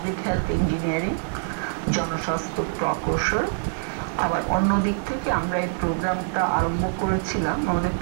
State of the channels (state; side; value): silent; left; digital silence